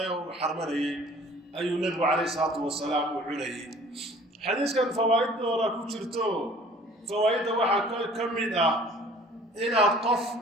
وحرمني أي النبي عليه الصلاة والسلام وعليه حديث كان فوائد دورة كتشرتو فوائد واحد كمدة إن القف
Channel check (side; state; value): both; normal; correlation 0.50